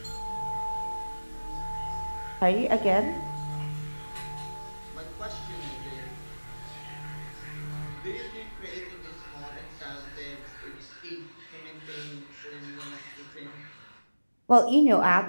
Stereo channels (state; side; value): inverted; both; correlation -1.00